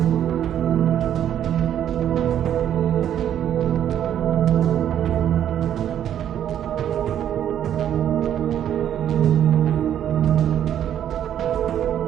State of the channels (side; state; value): left; quieter; 10.3 dB